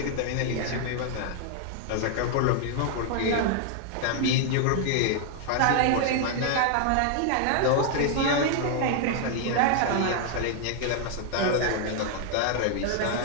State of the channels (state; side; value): different; both; correlation 0.00